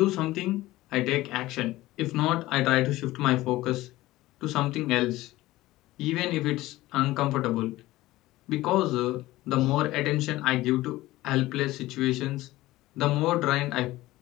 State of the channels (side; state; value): right; quieter; 17.5 dB